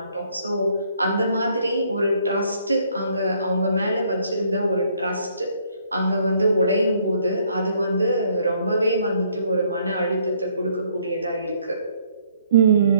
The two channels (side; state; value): both; inverted; correlation -0.66